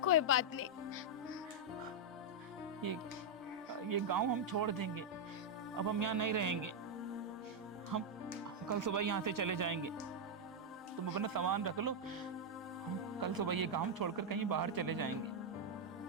कोई बात नहीं। ये गांव हम छोड़ देंगे। अब हम यहाँ नहीं रहेंगे। हम कल सुबह यहाँ से चले जाएंगे। तुम अपना सामान रख लो, हम कल सुबह ये गांव छोड़कर कहीं बाहर चले जाएंगे।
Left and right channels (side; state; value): both; normal; correlation -0.03